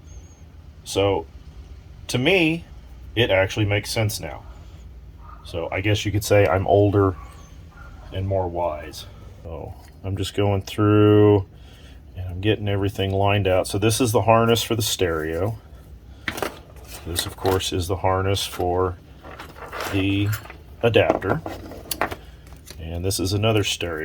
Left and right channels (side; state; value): both; identical; correlation 1.00